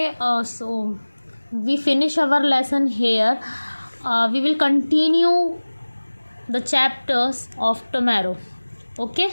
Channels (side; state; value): both; inverted; correlation -1.00